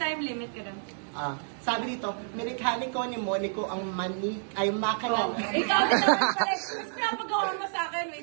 limit ka doon. Sabi dito, mekaniko ni Monico ang ay makina. Oh, ikaw din naman pala. Mas pinapagawa mo sa akin.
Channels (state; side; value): silent; left; 58 dB below the other